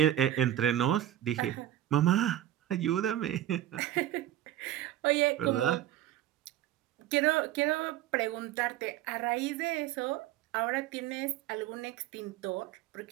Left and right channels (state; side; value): quieter; left; 12.5 dB